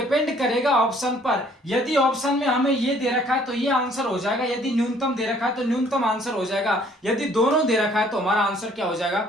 करेगा ऑप्शन पर। यदि ऑप्शन में हमें ये दे रखा है तो ये आंसर हो जाएगा, यदि न्यूनतम दे रखा है तो न्यूनतम आंसर हो जाएगा, यदि दोनों दे रखा है तो हमारा आंसर क्या हो जाएगा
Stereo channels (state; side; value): normal; both; correlation 0.60